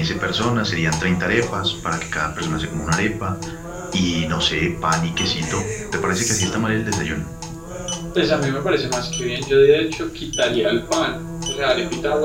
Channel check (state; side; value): identical; both; correlation 1.00